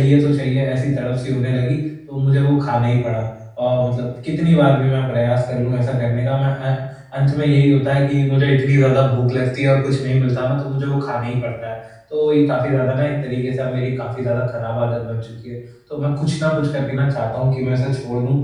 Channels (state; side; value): identical; both; correlation 1.00